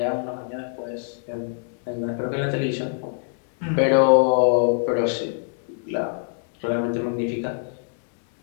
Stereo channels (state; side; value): silent; right; digital silence